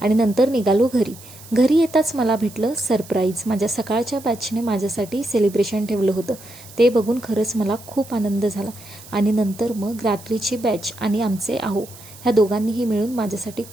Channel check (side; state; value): right; noise; hiss, 19 dB below the sound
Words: आणि नंतर निघालो घरी. घरी येताच मला भेटलं सरप्राईज. माझ्या सकाळच्या बॅचने माझ्यासाठी सेलिब्रेशन ठेवलं होतं. ते बघून खरंच मला खूप आनंद झाला. आणि नंतर मग रात्रीची बॅच आणि आमचे आहो ह्या दोघांनीही मिळून माझ्यासाठी